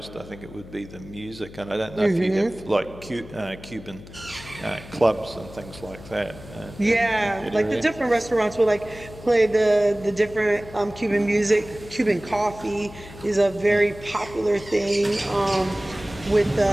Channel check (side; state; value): left; noise; hum, 17 dB below the sound